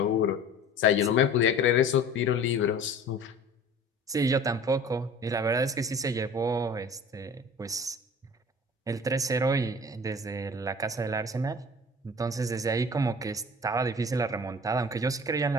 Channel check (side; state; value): both; normal; correlation 0.43